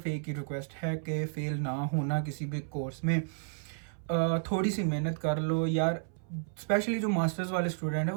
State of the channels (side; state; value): left; silent; 57 dB below the other